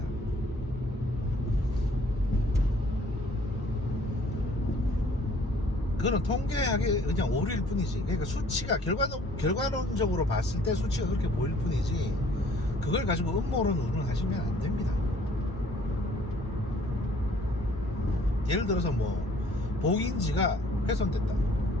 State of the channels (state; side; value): normal; both; correlation 0.57